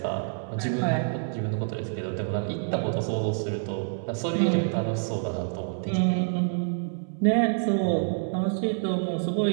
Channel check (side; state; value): left; silent; 60 dB below the other